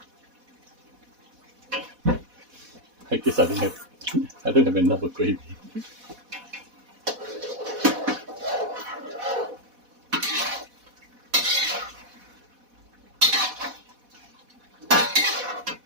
I guess I don't have enough of gravy.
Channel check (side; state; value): left; late; 4.1 ms